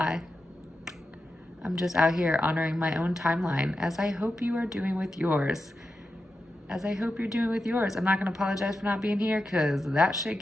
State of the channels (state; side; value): normal; both; correlation 0.90